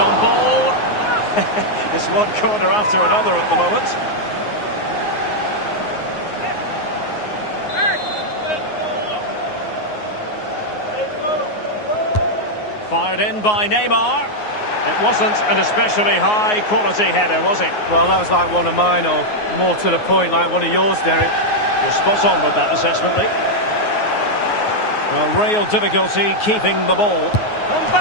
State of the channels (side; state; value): right; late; 9.5 ms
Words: ball. It's one corner after another at the moment. Fired in by Neymar. It wasn't an especially high-quality header, was it? Well, that was like one of mine, or more to the point, like one of yours, Derek. You're spot on with that assessment, Lee. Well, real difficulty keeping the ball.